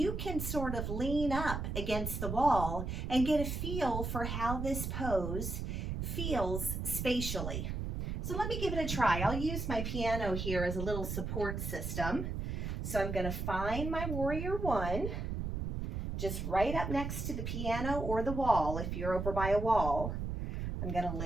can sort of lean up against the wall and get a feel for how this pose feels spatially. So let me give it a try. I'll use my piano here as a little support system. So I'm going to find my warrior one, just right up next to the piano or the wall if you're over by a wall. I'm going to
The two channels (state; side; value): noise; right; rumble, 3 dB below the sound